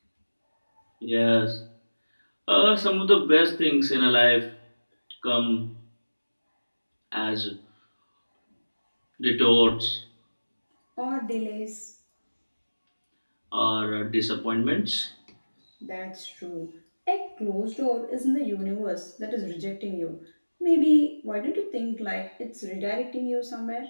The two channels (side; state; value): both; inverted; correlation -1.00